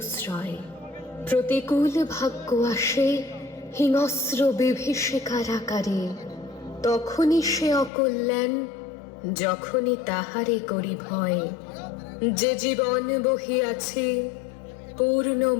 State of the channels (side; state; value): right; drops out; at 7.9 s